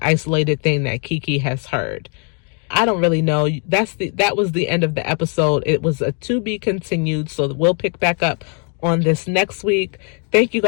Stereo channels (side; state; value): right; quieter; 39.9 dB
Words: isolated thing that Kiki has heard. I don't really know. That was the end of the episode. It was a to be continued, so we'll pick back up on this next week. Thank you